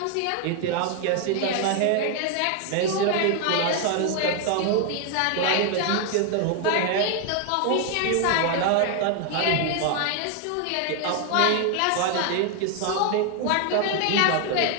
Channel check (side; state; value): both; different; correlation 0.00